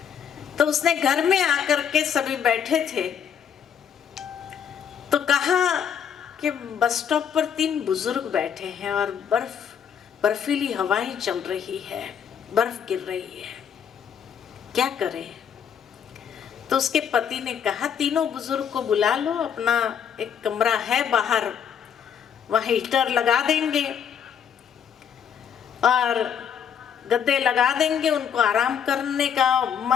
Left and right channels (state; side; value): quieter; right; 8.1 dB